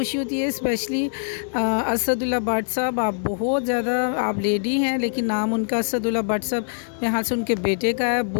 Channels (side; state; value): right; silent; digital silence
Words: होती है। स्पेशली असदुल्ला भट्ट साहब, आप बहुत ज़्यादा, आप लेडी हैं लेकिन नाम उनका असदुल्ला भट्ट साहब यहाँ से उनके बेटे का है।